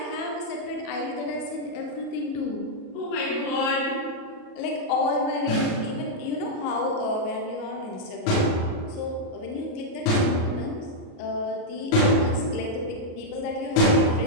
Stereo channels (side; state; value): right; late; 37 ms